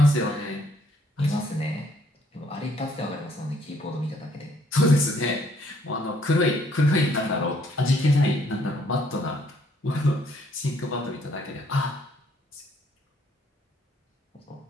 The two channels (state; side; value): normal; both; correlation 0.65